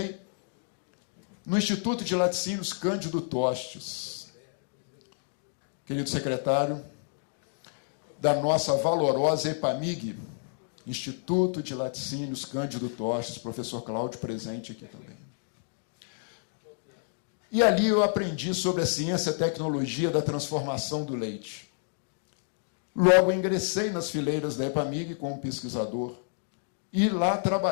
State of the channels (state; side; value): silent; right; digital silence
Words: no Instituto de Laticínios Cândido Tostes. Querido secretário da nossa valorosa EPAMIG, Instituto de Laticínios Cândido Tostes, professor Cláudio presente aqui também. E ali eu aprendi sobre a ciência e a tecnologia da transformação do leite. Logo ingressei nas fileiras da EPAMIG como pesquisador e lá